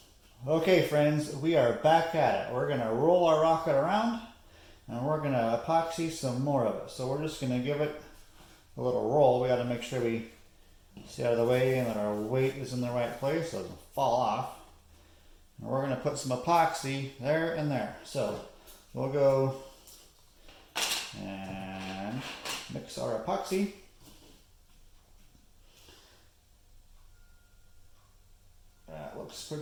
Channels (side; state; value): both; identical; correlation 1.00